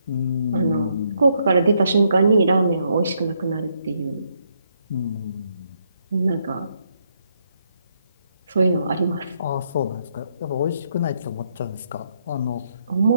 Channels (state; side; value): inverted; both; correlation -0.76